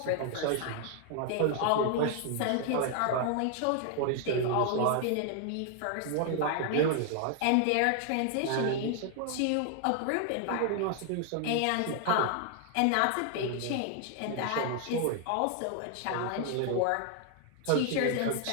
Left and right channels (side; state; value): both; different; correlation 0.00